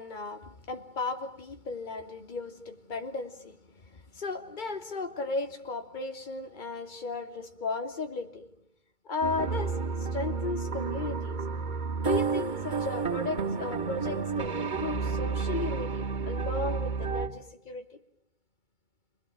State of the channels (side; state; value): right; late; 2.2 ms